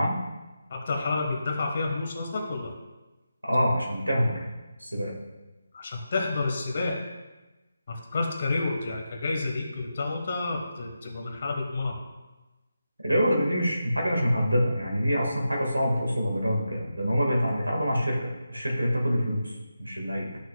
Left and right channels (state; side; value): inverted; both; correlation -0.88